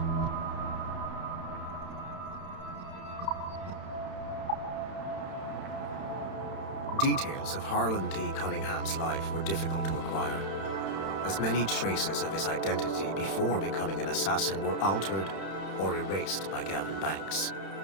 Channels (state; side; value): late; right; 31 ms